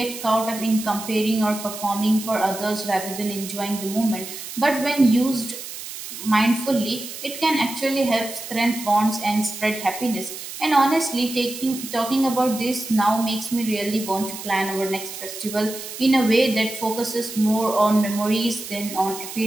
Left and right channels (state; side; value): noise; right; hiss, 10 dB below the sound